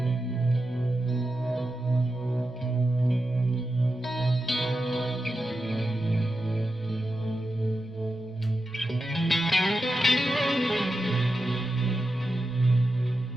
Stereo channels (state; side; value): normal; both; correlation 0.89